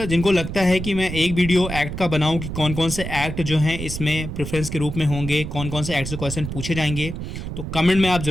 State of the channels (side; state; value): right; noise; rumble, 7 dB below the sound